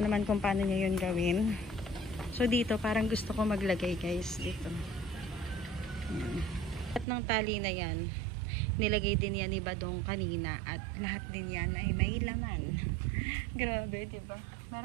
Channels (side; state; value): left; drops out; at 7.1 s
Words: kung paano niya 'yun gawin. So dito parang gusto ko maglagay guys dito. Ayan. At ng tali na 'yan, nilagay din yan ni Badong kanina at lahat din yan ay may laman. Grabe, 'di ba?